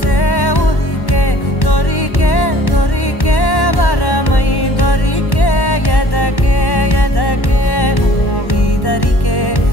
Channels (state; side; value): late; right; 1.1 ms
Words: ఉరికే దొరికే దొరికే వరమై దొరికే ఎదకే ఎదకే నువ్విదరికే